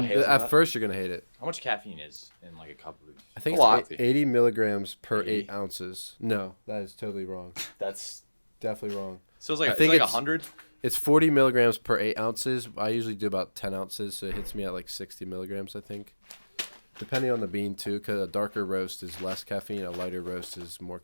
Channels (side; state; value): both; inverted; correlation -1.00